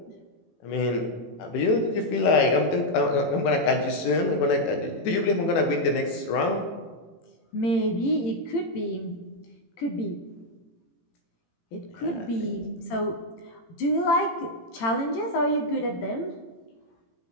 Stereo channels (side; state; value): right; late; 18 ms